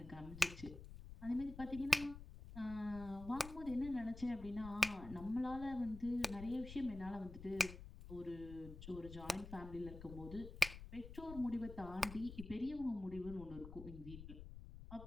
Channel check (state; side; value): noise; left; rumble, 12 dB below the sound